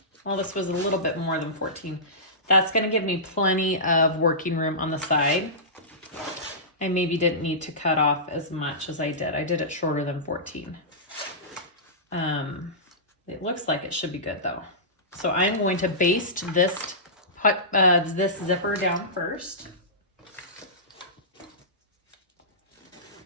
well, this was a little bit more than 14. That's going to give me plenty of working room on the side. I maybe didn't need to cut off as much as I did. I did it shorter than 14. It looks like it should be good though. So I'm going to baste this zipper down first.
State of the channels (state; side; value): normal; both; correlation -0.20